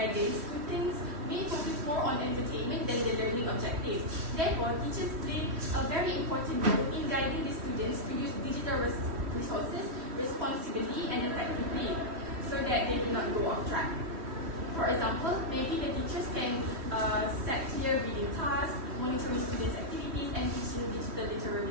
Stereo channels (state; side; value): late; left; 3.1 ms